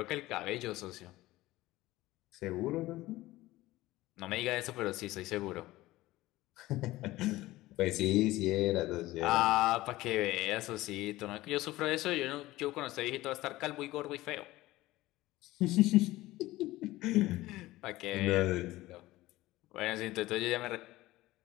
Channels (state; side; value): quieter; right; 17.7 dB